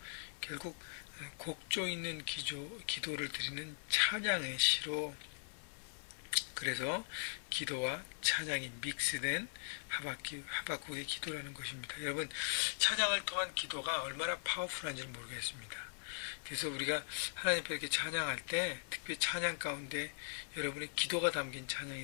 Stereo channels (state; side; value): silent; right; 51 dB below the other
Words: 결국 곡조 있는 기도를 드리는 찬양의 시로, 그래서 기도와 찬양이 믹스된 하박국의 기도라는 것입니다. 여러분, 찬양을 통한 기도가 얼마나 파워풀한지를 모르겠습니다. 그래서 우리가 하나님 앞에 이렇게 찬양할 때 특별히 찬양 가운데 여러분의 기도가 담긴